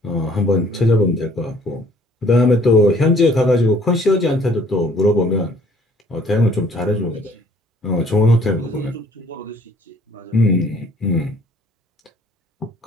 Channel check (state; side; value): normal; both; correlation 0.59